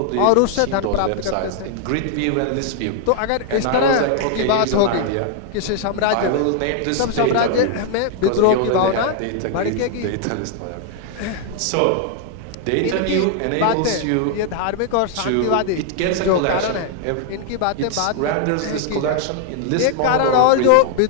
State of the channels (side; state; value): both; different; correlation 0.00